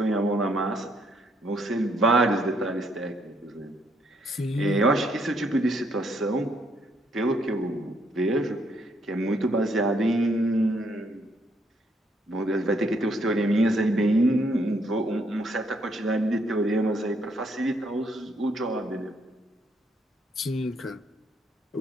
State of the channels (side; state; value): both; normal; correlation 0.72